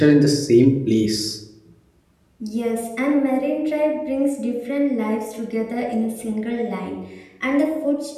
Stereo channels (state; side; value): identical; both; correlation 1.00